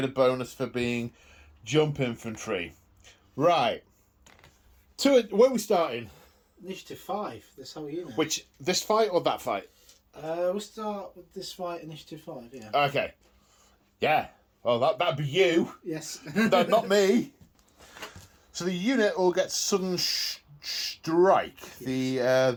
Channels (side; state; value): both; identical; correlation 1.00